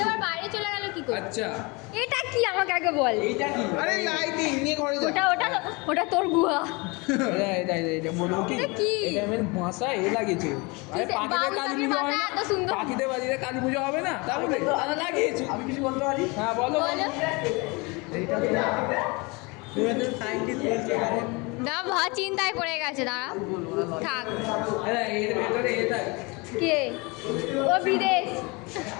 এবার বাইরে চলে গেল কি করে? আচ্ছা এটা কি আমাকে আগে বল। আরে লাইটিং নিয়ে ঘরে যা ওটা ওটা ওটা তোর গুহা। এটা বলবো কি এটা কি? এটা আমার বাসায় এ লাগিয়েছে আরে পাখিদের কালী পুজো হয় না এত সুন্দর। পাখিদের বাড়িতে কালী পুজো হবে না তাহলে তারা লাগিয়েছে আমি কিছু বলতে পারি হ্যাঁ বলো বলো না, ভা চিন্তায় পড়ে গেছে, দাঁড়া থাক। এর ভেতরে এটা কে ও বিদেশ?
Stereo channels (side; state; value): right; quieter; 27.3 dB